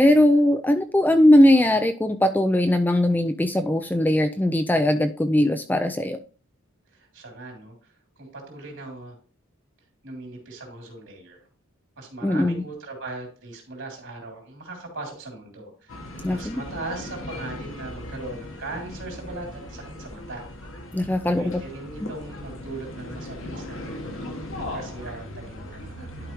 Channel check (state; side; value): normal; both; correlation 0.86